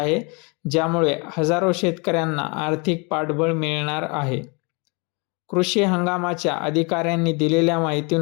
ज्यामुळे हजारो शेतकऱ्यांना आर्थिक पाठबळ मिळणार आहे। कृषी हंगामाच्या अधिकाऱ्यांनी दिलेल्या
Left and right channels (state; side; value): quieter; right; 30.7 dB